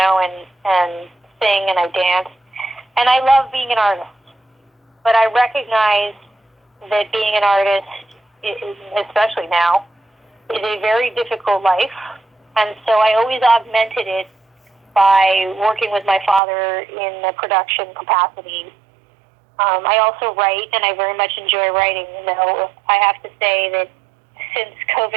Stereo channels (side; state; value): left; drops out; at 16.4 s